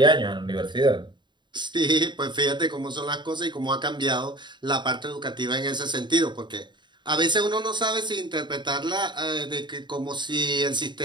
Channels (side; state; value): left; late; 0.22 ms